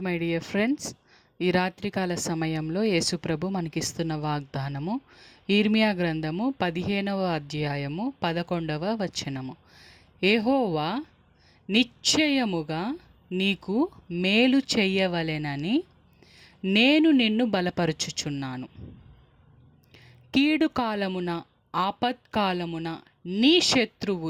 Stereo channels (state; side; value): identical; both; correlation 1.00